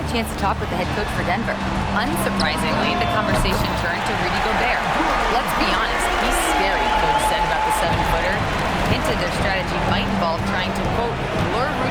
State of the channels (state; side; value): identical; both; correlation 1.00